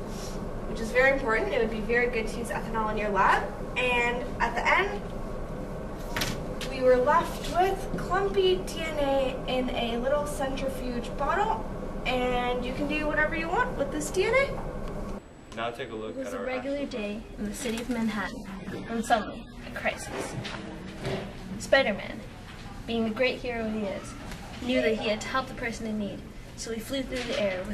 which is very important. It would be very good to use ethanol in your lab. And at the end, we were left with clumpy DNA in a little centrifuge bottle, and you can do whatever you want with this DNA. Now take a look It was at a our regular day in the city of Manhattan when suddenly a crisis. Spider-Man, being the great hero he is, knew that he had to help the person in need, so he flew through the air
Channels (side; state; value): both; identical; correlation 1.00